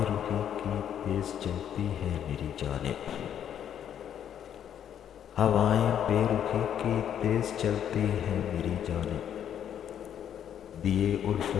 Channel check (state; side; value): quieter; right; 9.5 dB